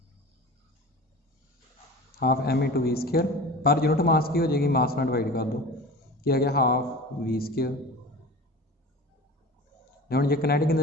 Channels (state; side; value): normal; both; correlation 0.36